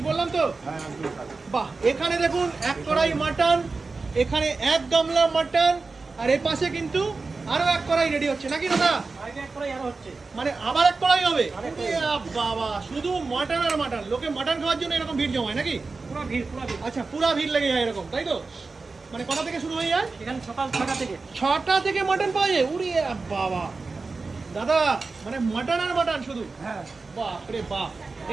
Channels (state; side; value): quieter; left; 4.0 dB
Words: বললাম তো? বাহ, এখানে দেখুন 1 কড়াই মাটন, এখানে 1 গামলা মাটন, আর এর পাশে কিন্তু আরো 1 কড়াই রেডি হচ্ছে নাকি দাদা? মানে আবার 1 কড়াই হবে? বাবা, শুধু মাটন আর মাটন। লোকে মাটন খাওয়ার জন্য এরকম ভিড় জমায় নাকি? আচ্ছা, পুরা ভিড় লেগে যায় এরকম, তাই তো? মানে কটা থেকে শুরু হয়ে যায়? এখানে সকাল 6টা থেকে 6টা থেকে মাটন পাওয়া যায়? উড়ি বাবা দাদা, মানে মাটন আর মাটন শুধু? হ্যাঁ। বাপ রে বাপ।